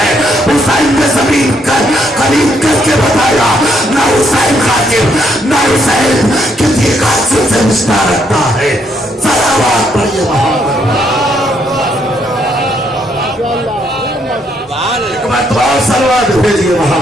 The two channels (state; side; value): normal; both; correlation 0.73